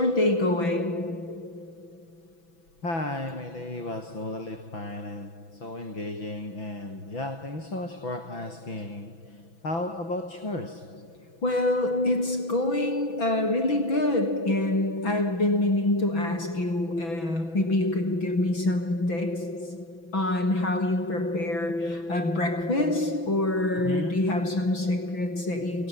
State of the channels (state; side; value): late; right; 6.0 ms